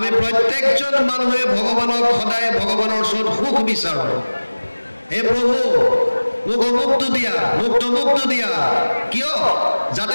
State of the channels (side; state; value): both; inverted; correlation -1.00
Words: প্ৰত্যেকজন মানুহে ভগৱানক সদায় ভগৱানৰ ওচৰত সুখ বিচাৰোঁ হে প্ৰভু মোক অমুকটো দিয়া মোক তমুকটো দিয়া কিয়